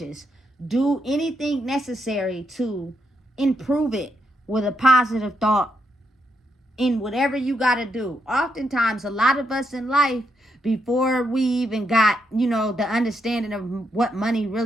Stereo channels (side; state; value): both; normal; correlation 0.80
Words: do anything necessary to improve it with a positive thought in whatever you got to do. Oftentimes, a lot of us in life, before we even got, the understanding of what money